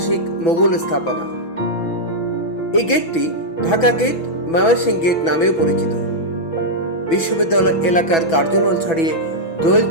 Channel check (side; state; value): right; late; 6.1 ms